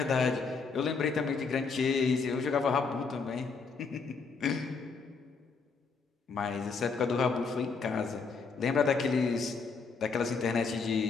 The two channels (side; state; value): right; quieter; 4.9 dB